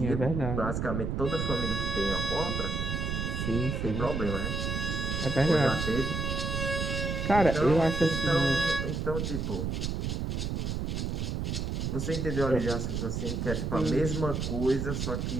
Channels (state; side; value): noise; right; rumble, 1 dB below the sound